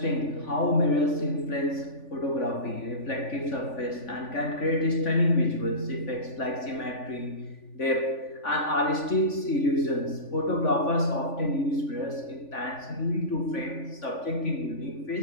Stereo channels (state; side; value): late; right; 3.5 ms